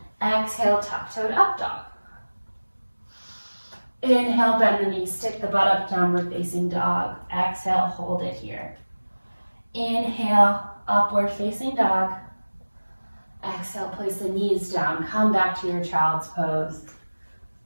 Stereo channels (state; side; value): inverted; both; correlation -1.00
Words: Exhale, tuck-toed up dog. Inhale, bend the knees, stick the butt up, downward facing dog. Exhale, hold it here. Inhale, upward facing dog. Exhale, place the knees down, come back to your child's pose.